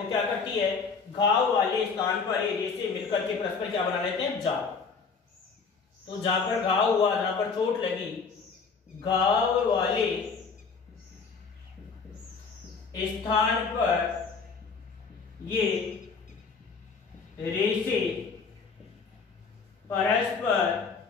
क्या करती है? घाव वाले स्थान पर ये रेशे मिलकर के परस्पर क्या बना लेते हैं? जाल। तो जहां पर घाव हुआ, जहां पर चोट लगी, घाव वाले स्थान पर ये रेशे परस्पर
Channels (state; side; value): quieter; right; 5.1 dB